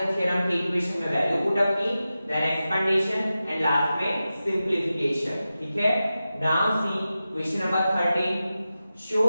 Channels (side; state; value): both; inverted; correlation -0.93